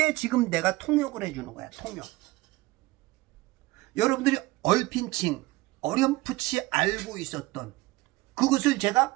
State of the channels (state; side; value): quieter; left; 20.1 dB